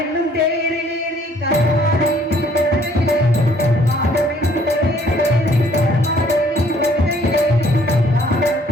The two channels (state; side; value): normal; both; correlation 0.61